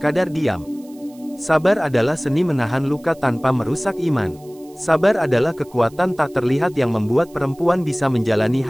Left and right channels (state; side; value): noise; right; hiss, 27 dB below the sound